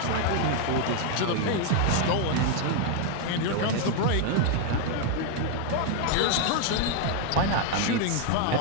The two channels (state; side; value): different; both; correlation 0.00